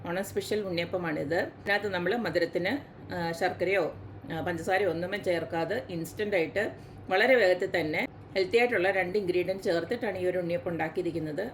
ഓണം സ്പെഷ്യൽ ഉണ്ണിയപ്പമാണിത്. ഇതിനകത്ത് നമ്മൾ മധുരത്തിന് ശർക്കരയോ പഞ്ചസാരയോ ഒന്നും ചേർക്കാതെ ഇൻസ്റ്റൻ്റായിട്ട് വളരെ വേഗത്തിൽ തന്നെ ഹെൽത്തി ആയിട്ടുള്ള 2 ഇൻഗ്രീഡിയൻറ്റ് ചേർത്തിട്ടാണ് ഈ ഒരു ഉണ്ണിയപ്പം ഉണ്ടാക്കിയിരിക്കുന്നത്.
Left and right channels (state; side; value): identical; both; correlation 1.00